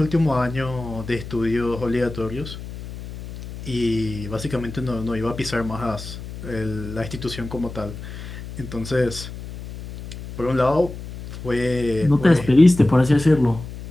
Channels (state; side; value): noise; left; hum, 11 dB below the sound